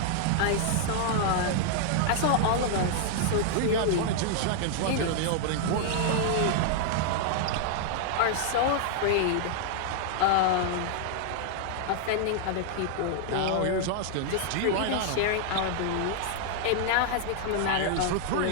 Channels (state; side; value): different; both; correlation -0.01